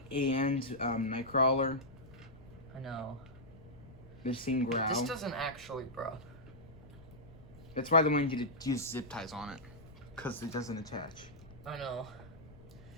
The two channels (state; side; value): noise; left; rumble, 20 dB below the sound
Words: and Nightcrawler. I know. The same growl. This doesn't actually, bro. That's why they wanted you to use zip ties on it. Because it doesn't attach. I know.